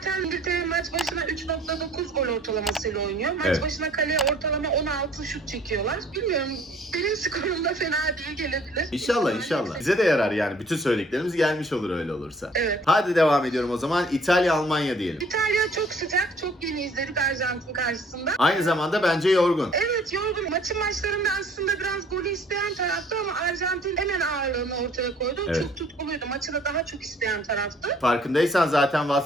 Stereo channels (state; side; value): normal; both; correlation 0.56